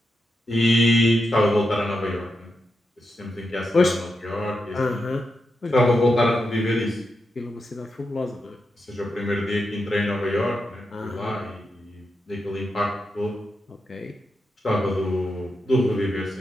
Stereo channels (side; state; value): both; normal; correlation 0.87